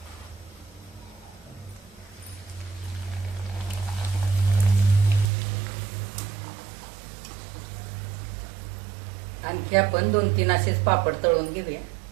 आणखी आपण 2-3 असेच पापड तळून घेऊया.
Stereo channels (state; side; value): drops out; left; at 5.2 s